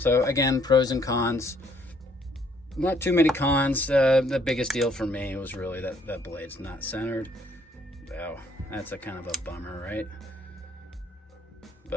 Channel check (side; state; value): both; normal; correlation 0.66